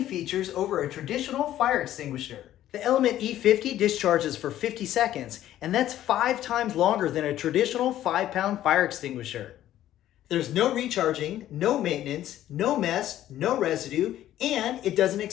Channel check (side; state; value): right; quieter; 12.8 dB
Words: features over a traditional fire extinguisher. The Element E50 discharges for 50 seconds, and that's 5 times longer than a traditional 5-pound fire extinguisher. There's no recharging, no maintenance, no mess, no residue, and it doesn't